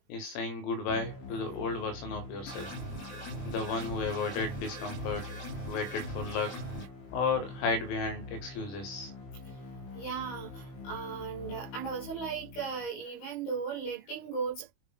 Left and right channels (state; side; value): late; right; 21 ms